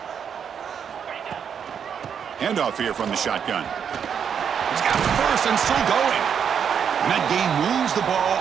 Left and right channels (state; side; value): quieter; left; 7.6 dB